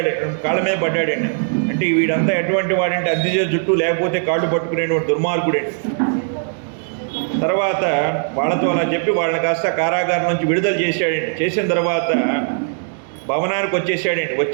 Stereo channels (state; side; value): silent; left; digital silence